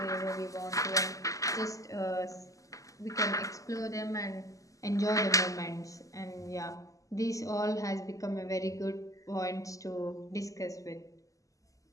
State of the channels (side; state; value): right; late; 0.16 ms